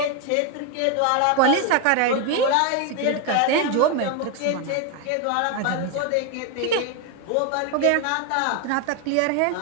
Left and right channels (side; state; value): both; different; correlation 0.01